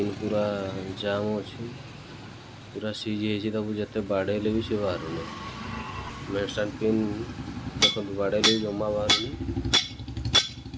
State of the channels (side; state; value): both; identical; correlation 1.00